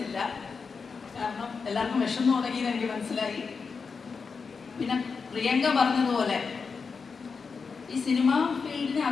കാരണം എല്ലാവർക്കും വിഷമം തുടങ്ങിയെന്ന് എനിക്ക് മനസ്സിലായി. പിന്നെ പ്രിയങ്ക പറഞ്ഞതുപോലെ ഈ സിനിമ ഫീൽഡിന്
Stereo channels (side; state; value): right; quieter; 5.2 dB